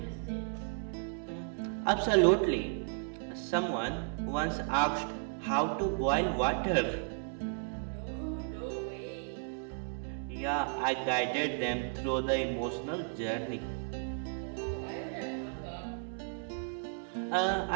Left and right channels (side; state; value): left; silent; 55 dB below the other